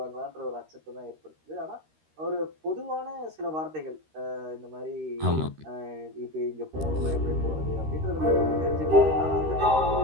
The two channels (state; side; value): late; left; 13 ms